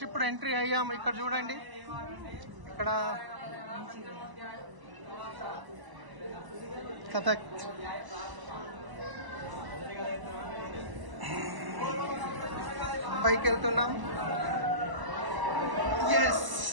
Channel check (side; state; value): left; late; 1.0 ms